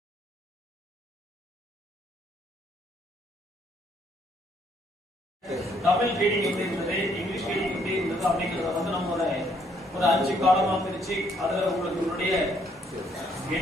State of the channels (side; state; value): both; normal; correlation 0.68